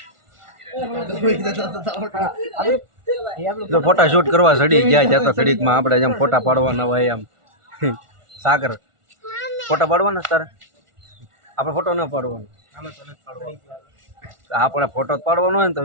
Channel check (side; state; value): left; late; 1.4 ms